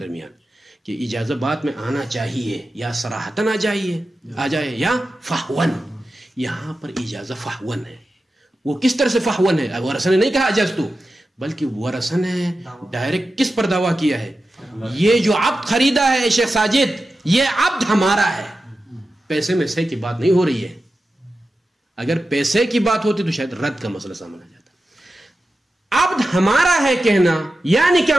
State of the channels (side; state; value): both; normal; correlation 0.92